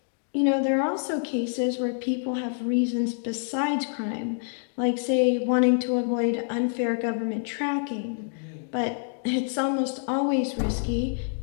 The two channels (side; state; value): right; silent; 58 dB below the other